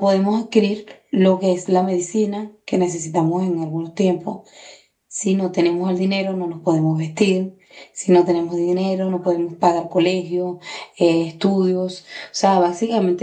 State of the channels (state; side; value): identical; both; correlation 1.00